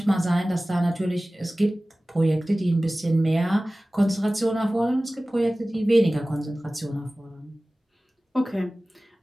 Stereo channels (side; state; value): both; normal; correlation 0.97